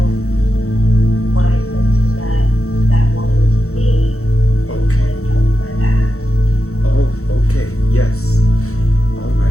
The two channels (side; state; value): right; late; 0.64 ms